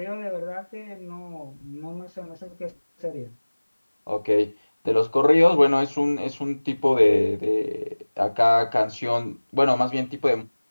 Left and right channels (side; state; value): both; inverted; correlation -1.00